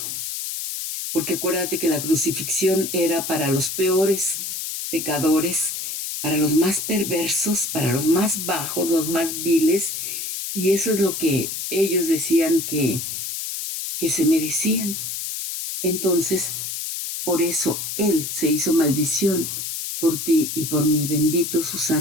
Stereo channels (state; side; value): noise; left; hiss, 5 dB below the sound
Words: Porque acuérdate que la crucifixión era para los peores pecadores, para los más perversos, para los más bajos, los más viles, y eso es lo que ellos decían que se merecían. Entonces, por eso Él se hizo maldición por ti y por mí. Bendito su